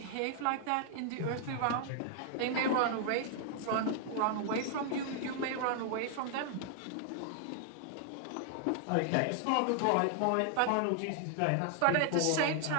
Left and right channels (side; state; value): both; different; correlation 0.00